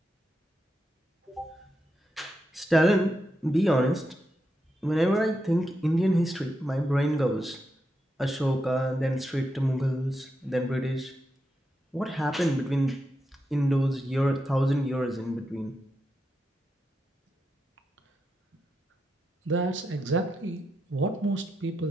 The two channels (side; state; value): both; normal; correlation 0.85